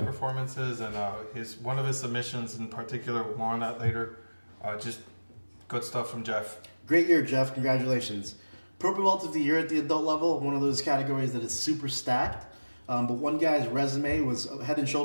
and one of his submissions in particular, we'll more on that later. Just good stuff from Jeff. Great year, Jeff. Congratulations. Purple Belt of the Year at the adult level, one of those categories that is super stacked. But one guy's resume was head and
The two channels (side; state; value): both; inverted; correlation -1.00